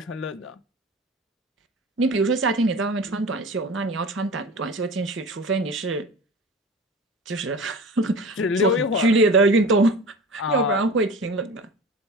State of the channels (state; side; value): normal; both; correlation 0.36